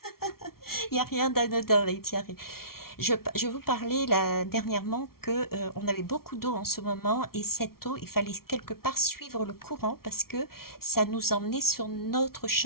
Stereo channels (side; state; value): right; late; 0.94 ms